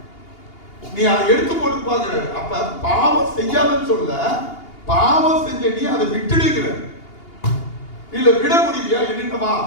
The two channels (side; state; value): right; late; 2.8 ms